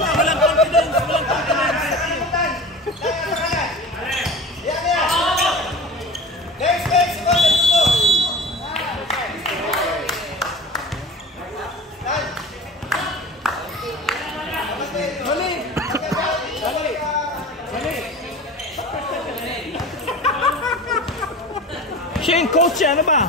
confidence, walang confidence. Siya yung coach, ano ba?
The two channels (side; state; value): both; normal; correlation 0.35